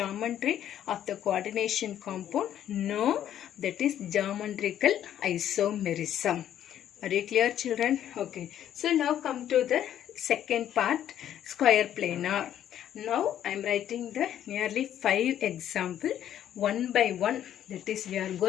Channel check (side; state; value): right; quieter; 10.8 dB